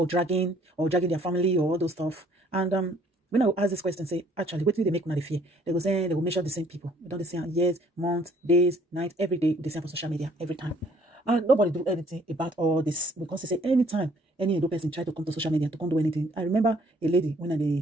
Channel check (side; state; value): both; normal; correlation 0.61